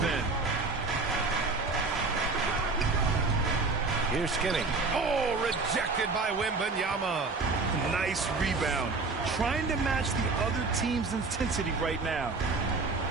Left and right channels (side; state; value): left; quieter; 3.9 dB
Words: end. Here's Skinny. Oh, rejected by Wembanyama. Nice rebound. Trying to match the other team's intensity right now.